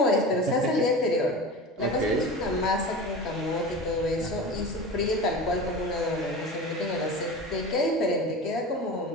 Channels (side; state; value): both; normal; correlation 0.31